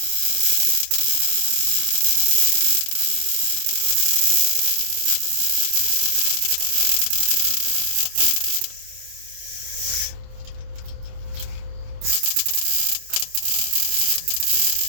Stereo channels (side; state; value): left; late; 27 ms